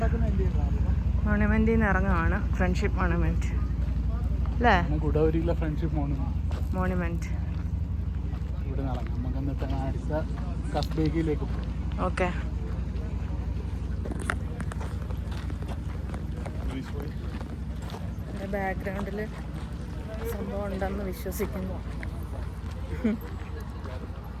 മോണമെന്റിൽ നിന്ന് ഇറങ്ങുകയാണ്. ഫ്രണ്ട്ഷിപ്പ് മോണമെന്റ് അല്ലേ? ഗുഡാവരിയിലെ ഫ്രണ്ട്ഷിപ്പ് മോണമെന്റ്. ഇവിടെ ഇറങ്ങാം. നമുക്ക് എന്നിട്ട് അടുത്ത കസ്ബേഗിലേക്ക് പോകും. ഓക്കെ. ബാക്ക്ഗ്രൗണ്ടിൽ സംഭവം ഉണ്ടെന്ന് വിശ്വസിക്കുന്നു.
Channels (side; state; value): both; identical; correlation 1.00